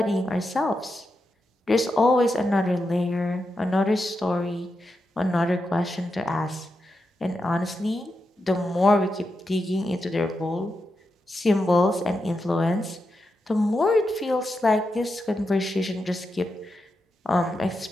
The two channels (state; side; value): normal; both; correlation 0.87